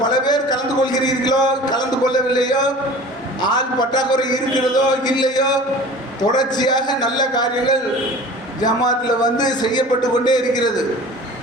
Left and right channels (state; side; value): normal; both; correlation 0.41